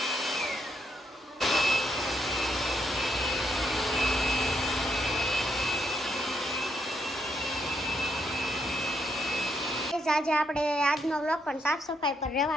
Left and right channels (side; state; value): both; normal; correlation 0.77